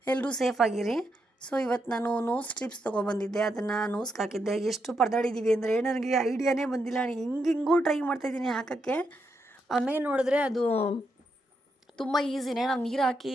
ಎಲ್ಲರೂ ಸೇಫಾಗಿರಿ. ಸೊ ಇವತ್ತು ನಾನು ನೋಸ್ ಸ್ಟ್ರಿಪ್ಸ್ ತೊಗೊಬಂದಿದ್ದೆ. ಅದನ್ನು ನೋಸ್ಗೆ ಹಾಕಿದ್ದೆ. ಎಷ್ಟು ಪರದಾಡಿದ್ದೀವಿ ಅಂದರೆ ನನಗೆ ಐಡಿಯಾನೇ ಬಂದಿಲ್ಲ. ಹಿಂಗೂ ಟ್ರೈ ಮಾಡ್ತಾಯಿದ್ದೀನಿ ಹಾಕೋಕ್ಕೆ. ಆಮೇಲೆ ನೋಡಿದ್ರೆ ಅದು ತುಂಬ ಈಸಿನೇ. ನಾವು ನೀರು ಹಾಕಿ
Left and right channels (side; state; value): both; normal; correlation 0.82